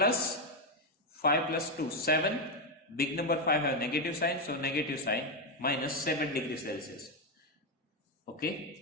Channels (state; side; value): normal; both; correlation 0.06